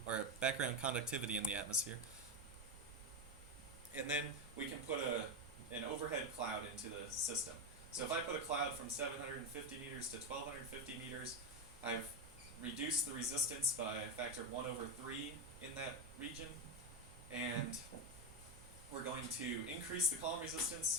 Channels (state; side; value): normal; both; correlation 0.11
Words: or background conductivity in the atmosphere. And then we can put an overhead cloud into the system. So if I put a cloud from 750 meters to 1250 meters, I've reduced the resistance by a factor of 1/3 in that region. And we're going to increase the column